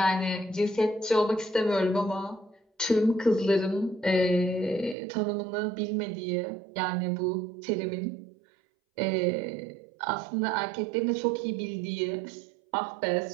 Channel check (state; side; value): drops out; left; at 5.0 s